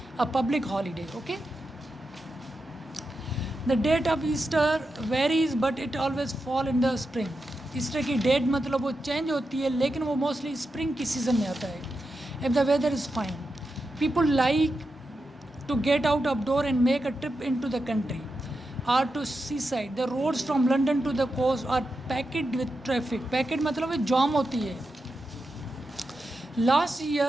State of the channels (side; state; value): both; normal; correlation 0.88